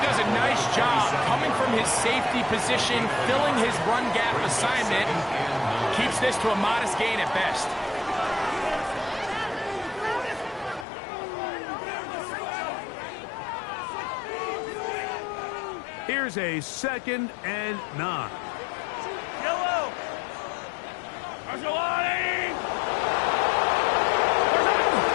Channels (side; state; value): right; drops out; at 10.9 s